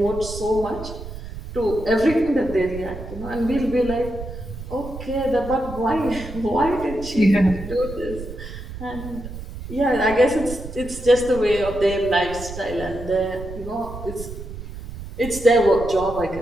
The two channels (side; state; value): right; noise; rumble, 11 dB below the sound